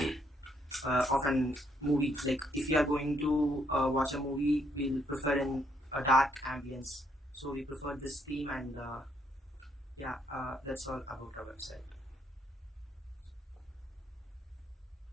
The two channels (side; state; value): both; normal; correlation 0.72